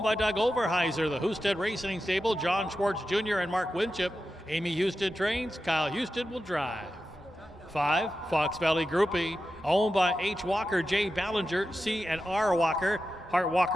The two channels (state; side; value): normal; both; correlation 0.91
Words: by Doug Overheiser, the Husted Racing Stable, John Schwartz Jr. and Mark Winship. Amy Houston trains, Kyle Houston will drive. 5, Fox Valley Groupie, owned by H. Walker, J. Ballinger, C. and R. Walker. Hart